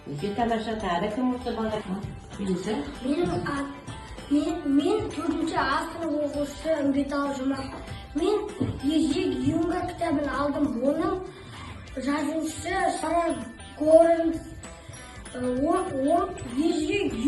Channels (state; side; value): identical; both; correlation 1.00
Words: Өте тамаша. Тағы кім осы балалар? Мен 4-ші сынып оқушысы Үмбетал Жұмақ. Мен Ежик Юнга кітабын алдым. Оның жазушысы Сара Горенс. Ол Ежик